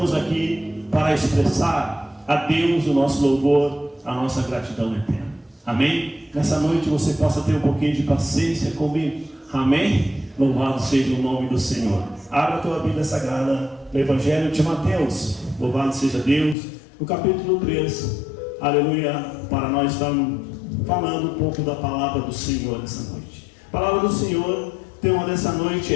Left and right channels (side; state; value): right; drops out; at 16.6 s